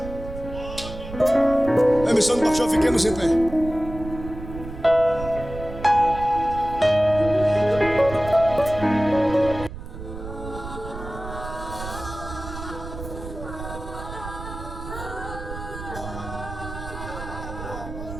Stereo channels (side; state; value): right; noise; rumble, 11 dB below the sound